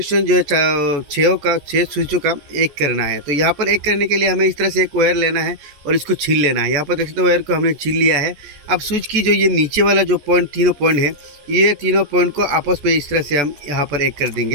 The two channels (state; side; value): late; left; 14 ms